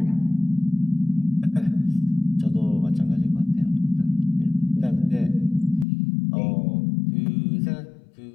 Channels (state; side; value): drops out; right; at 5.9 s